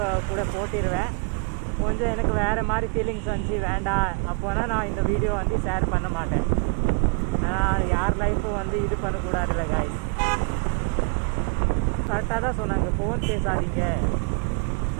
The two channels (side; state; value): left; quieter; 34.1 dB